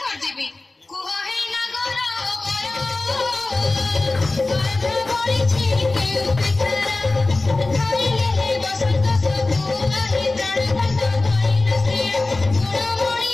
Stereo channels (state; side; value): quieter; right; 3.2 dB